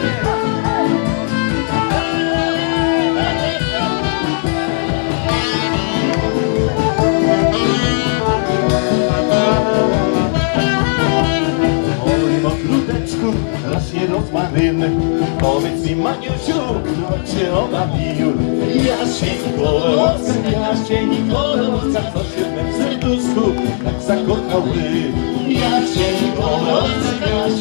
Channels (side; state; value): right; silent; 67 dB below the other